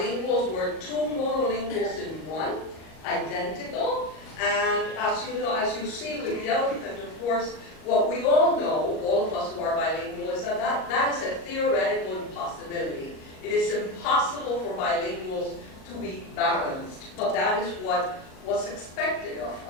were two monolinguals in one, identical. And as you know, as you see with the elephant, of course, what we all know, all of us who are bilingual, is that that is a theoretical impossibility. It is impossible for bilinguals to be balanced, but that is what was expected of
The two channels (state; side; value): late; right; 38 ms